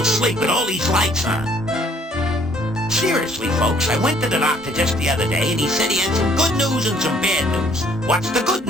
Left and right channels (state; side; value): normal; both; correlation 0.62